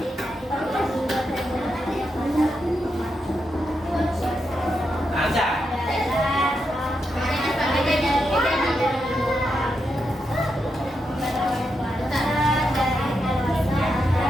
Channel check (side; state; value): both; normal; correlation 0.85